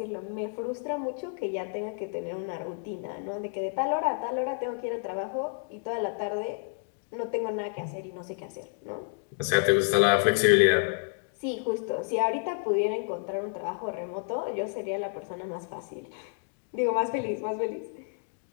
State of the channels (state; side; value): silent; right; 58 dB below the other